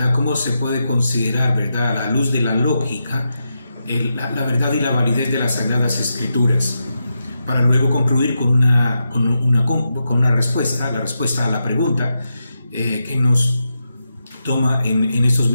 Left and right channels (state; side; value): inverted; both; correlation -0.87